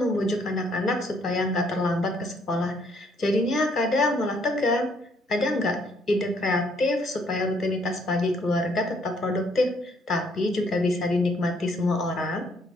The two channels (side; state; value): both; normal; correlation 0.67